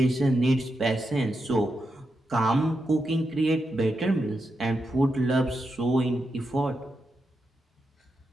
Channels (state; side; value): normal; both; correlation 0.86